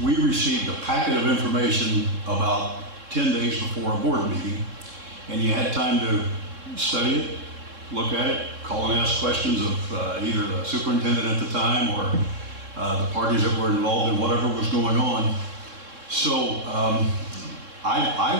we received a packet of information about 10 days before a board meeting, and you had time to study it, look at it, call and ask questions of either the superintendent at the time or the parties that were involved in whatever was going on. So I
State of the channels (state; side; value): late; left; 3.7 ms